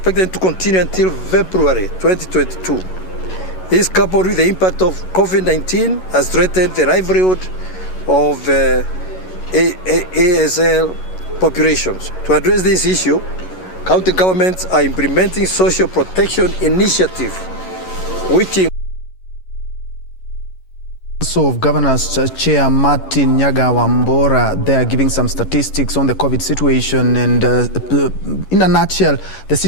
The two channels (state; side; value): late; right; 11 ms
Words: to continue until February 2022. This, coupled with the impact of COVID-19, has threatened the livelihood of ASL populations. To address this issue, county governments are implementing social protection initiative, which of Governors Chair Martin Nyaga Wambora, they are giving some statistics on the COVID situation, and in a nutshell, the